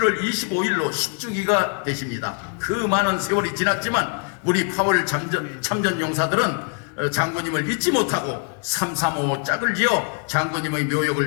25일로 10주기가 되십니다. 그 많은 세월이 지났지만 우리 8월 참전 용사들은 장군님을 잊지 못하고 335 짝을 지어 장군님의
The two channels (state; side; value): quieter; right; 38.8 dB